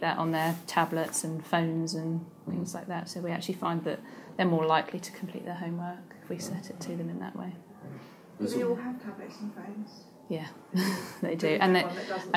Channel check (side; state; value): both; identical; correlation 1.00